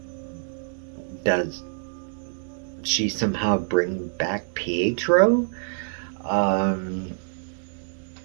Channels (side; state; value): left; silent; digital silence